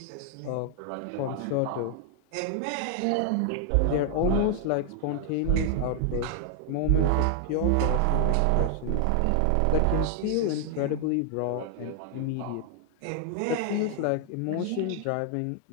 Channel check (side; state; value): both; different; correlation 0.00